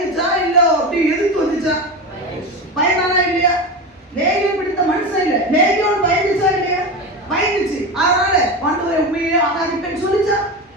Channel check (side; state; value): both; normal; correlation 0.22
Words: இல்ல அப்படி எதிர்த்து வந்துச்சா? பயனானா இல்லையா? லேகியோன் பிடித்த மனுஷன் இல்ல, லேகியோன் பயந்துச்சா இல்லையா? பயந்துச்சு. அதனால ஆண்டவரை உண்மையே ஆராதிப்பேன்னு சொல்லிச்சா?